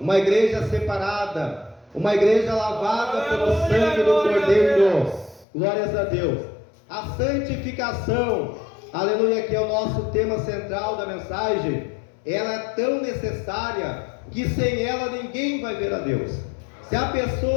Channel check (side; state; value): right; drops out; at 5.5 s